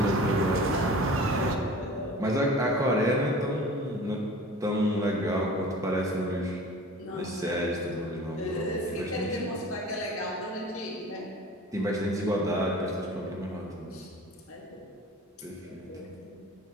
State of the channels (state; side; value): normal; both; correlation 0.41